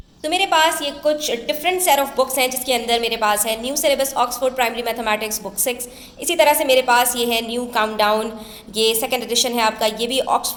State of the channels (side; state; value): both; identical; correlation 1.00